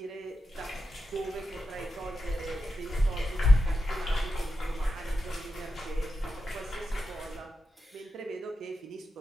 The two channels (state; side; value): normal; both; correlation 0.89